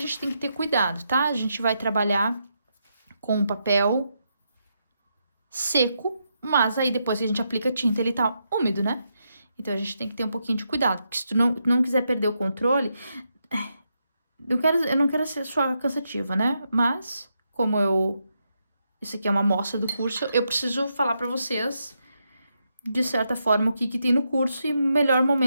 tem que ter cuidado, tá? A gente vai trabalhar com o papel seco, mas aí depois que a gente aplica a tinta, ele tá úmido, né? Então, a gente tem que ter um pouquinho de cuidado, porque se tu não quiser perder o controle... Eu não quero ser só cansativa, né? Mas, isso aqui é uma amostra do curso, eu preciso falar pra vocês, de certa forma, o que tem no curso, e melhor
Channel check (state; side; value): inverted; both; correlation -0.82